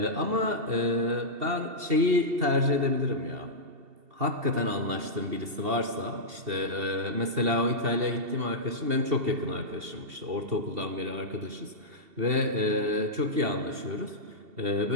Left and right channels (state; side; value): late; left; 2.7 ms